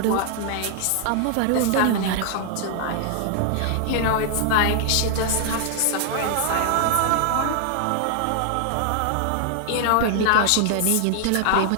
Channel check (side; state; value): both; different; correlation 0.00